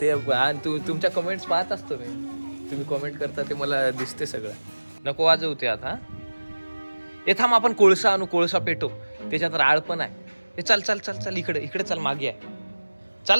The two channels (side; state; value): both; inverted; correlation -1.00